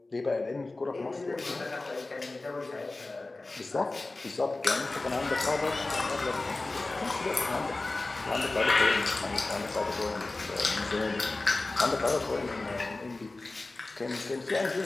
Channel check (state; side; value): quieter; right; 3.2 dB